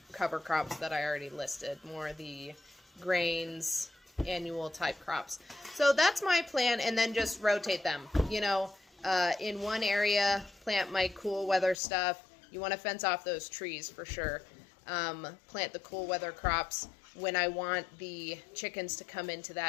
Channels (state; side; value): drops out; right; at 11.8 s